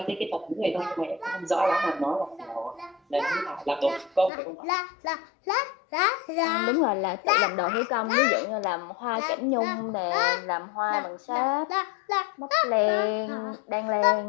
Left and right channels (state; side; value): drops out; right; at 4.3 s